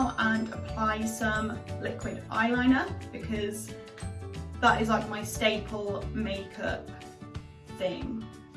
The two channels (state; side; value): identical; both; correlation 1.00